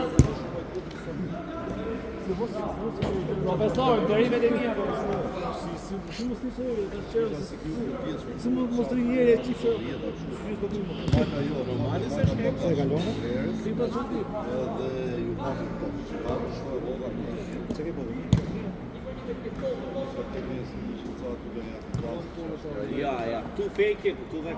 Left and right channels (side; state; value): both; identical; correlation 1.00